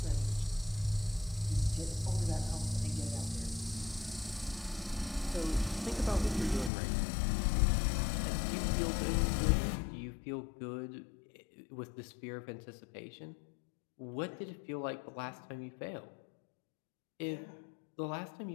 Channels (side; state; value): right; drops out; at 6.7 s